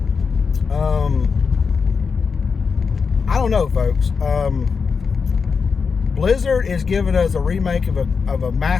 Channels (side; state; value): right; quieter; 5.4 dB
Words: I don't know, folks. Blizzard is giving us a remake of a